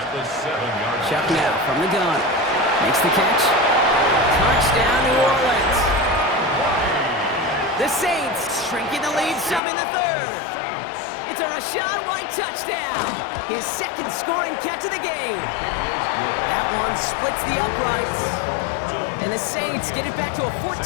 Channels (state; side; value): drops out; right; at 9.6 s